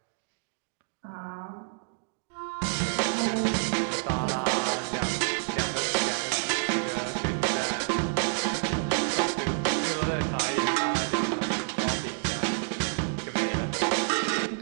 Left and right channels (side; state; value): left; silent; digital silence